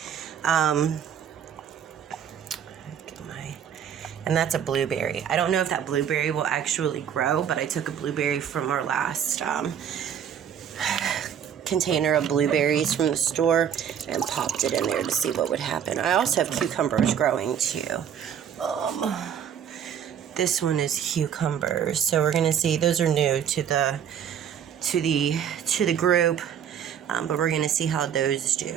And that's a blueberry. I don't know if that blueberry will actually grow, but I took a blueberry from our last container of blueberries from the store and popped it in there to see what would happen. I also have cucumbers growing too. This one is cucumbers, so we're gonna see. Those are new to the group, but we're gonna see how those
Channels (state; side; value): quieter; left; 8.7 dB